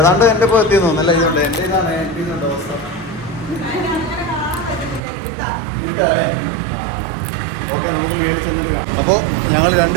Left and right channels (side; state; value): left; drops out; at 5.0 s